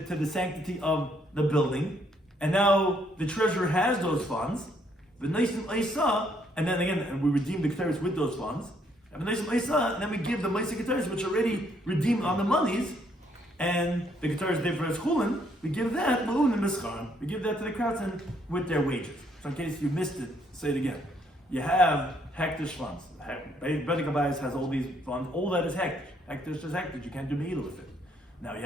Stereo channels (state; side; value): normal; both; correlation 0.69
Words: the sanctity of the building. And now the treasurer has those funds, and then again, we redeem the keteris with those funds, and then we give the Maisa keteris, which already redeemed on the monies, and the keteris therefore is chulin, we give that we give that to the craftsmen with their wages. So in case you missed it, say it again. You have hektish funds. Bedek Habayis has all these funds. All that is hektish. Hektish is hektish. You can't do meila with it. Now you